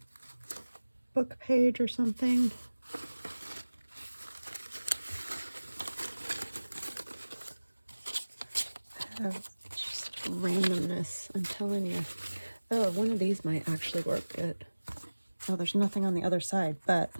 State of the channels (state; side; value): inverted; both; correlation -1.00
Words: book page or something. I have just randomness, I'm telling you. Oh, one of these might actually work good. Oh, there's nothing on the other side, but